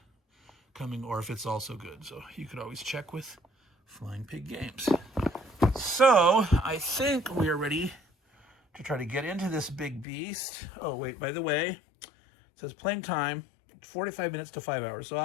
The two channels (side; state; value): right; drops out; at 10.1 s